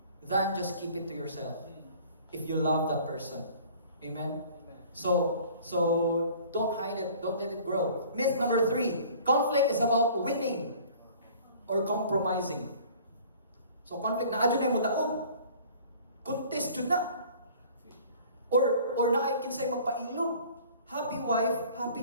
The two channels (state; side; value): inverted; both; correlation -0.49